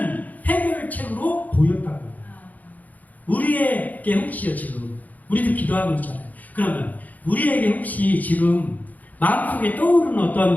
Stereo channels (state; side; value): late; right; 0.079 ms